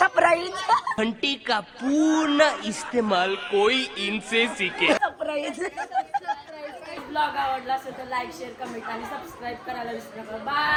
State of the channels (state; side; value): identical; both; correlation 1.00